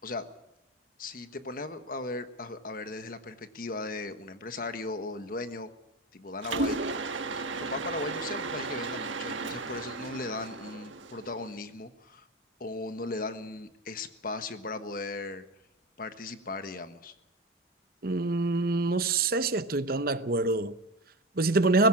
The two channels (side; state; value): both; normal; correlation 0.22